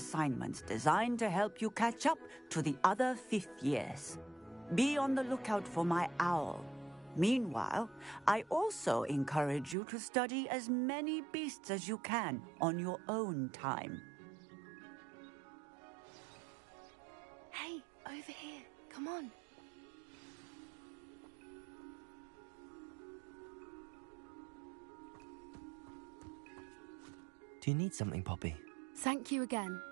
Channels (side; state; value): left; drops out; at 9.8 s